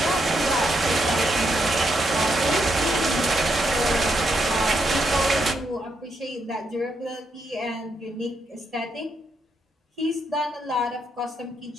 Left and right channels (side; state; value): both; normal; correlation 0.79